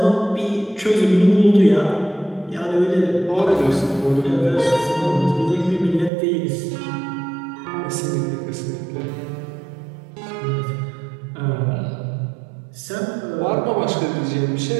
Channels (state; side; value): drops out; left; at 6.1 s